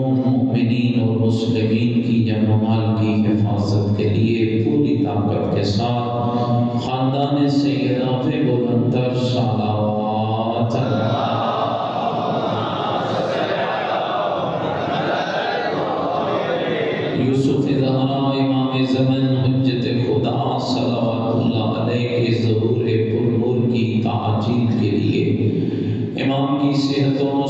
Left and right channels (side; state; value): both; identical; correlation 1.00